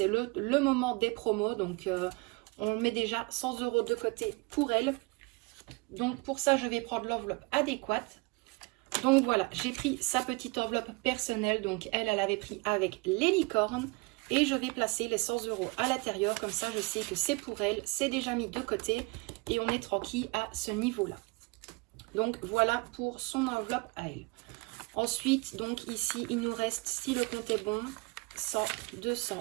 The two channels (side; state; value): left; quieter; 28.2 dB